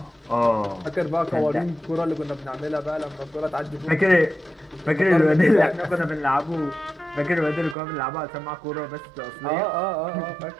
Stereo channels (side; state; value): left; drops out; at 7.8 s